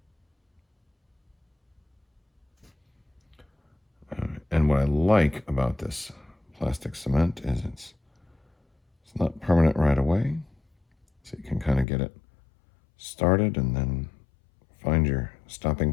And what I like about this plastic cement is it's not permanent right away, so you can kind of get it started and then find your stopping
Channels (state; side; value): drops out; right; at 11.9 s